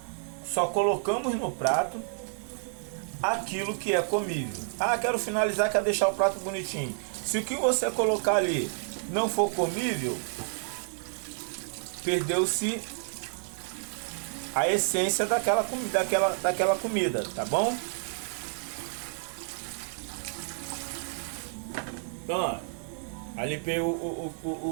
Só colocamos no prato aquilo que é comível. Quero finalizar, quero deixar o prato bonitinho. Se o que você colocar ali não for comível, perdeu-se a essência daquela comida, tá bom? Então, ó, aí limpei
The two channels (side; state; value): left; silent; digital silence